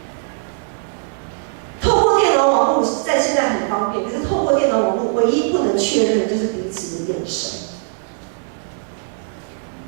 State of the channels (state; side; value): silent; left; digital silence